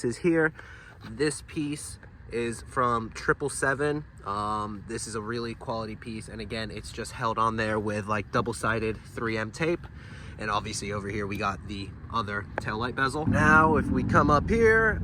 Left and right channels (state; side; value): identical; both; correlation 1.00